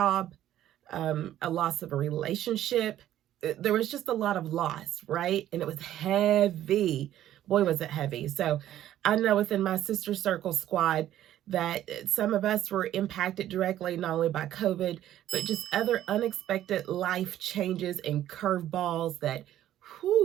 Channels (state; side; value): quieter; left; 12.5 dB